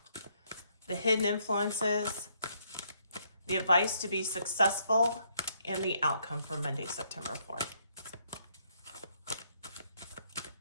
the hidden influences, the advice to be successful, and the outcome for Monday, September 4th.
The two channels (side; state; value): both; inverted; correlation -0.71